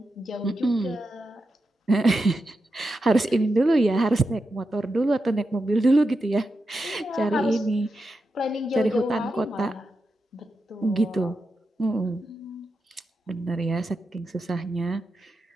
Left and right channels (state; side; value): normal; both; correlation 0.88